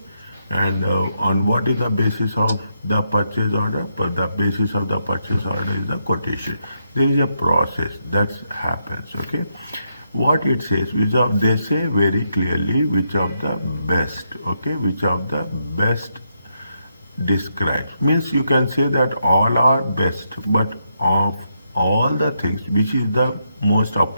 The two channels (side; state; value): both; inverted; correlation -0.81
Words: And on what is the basis of the purchase order? But the basis of the purchase order is the quotation. There is a process that happens. Okay, what it says, they say very clearly which of the best. Okay, which of the best describes. Means you can say that all are best, but of all the things, which is the most